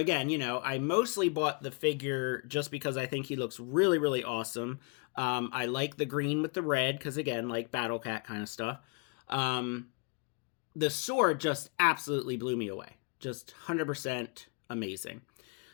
I mostly bought the figure just because I think he looks really awesome. I like the green with the red because, again, like Battle Cat kind of stuff. The sword just absolutely blew me away. Just 100% amazing.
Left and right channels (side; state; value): right; quieter; 34.3 dB